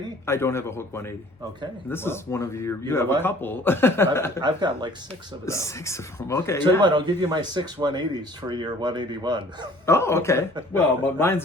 I don't have a Hulk 180. Okay. And this well, is one of your. You know have what? a couple. I've got like 6 of them. 6 of them. Okay. Tell you what, I'll give you my 6 180s for your 181. Oh, okay. Well, but mine's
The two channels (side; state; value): both; normal; correlation 0.52